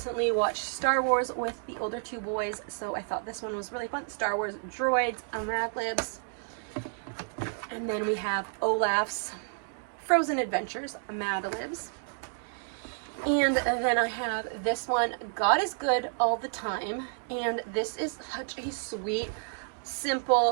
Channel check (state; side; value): silent; left; digital silence